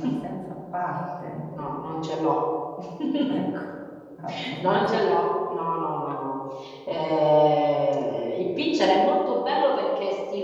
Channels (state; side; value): identical; both; correlation 1.00